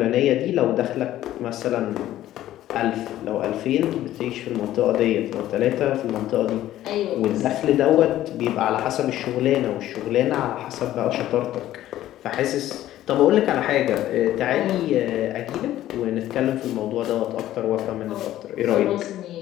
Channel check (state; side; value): quieter; right; 13.6 dB